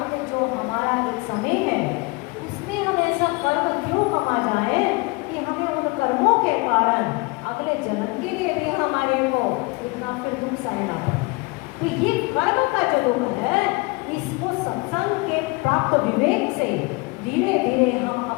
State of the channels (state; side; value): quieter; right; 26.7 dB